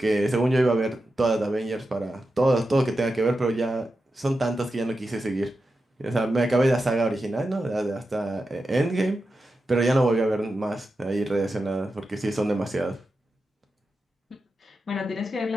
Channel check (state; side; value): normal; both; correlation 0.90